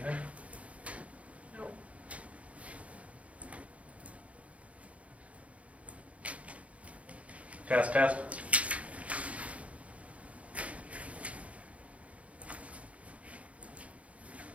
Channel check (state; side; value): late; left; 0.065 ms